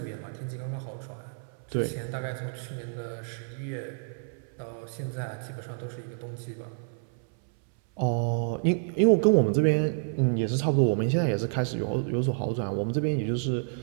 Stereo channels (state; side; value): silent; left; 59 dB below the other